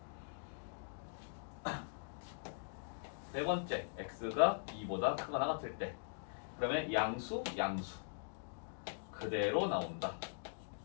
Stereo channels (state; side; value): silent; right; digital silence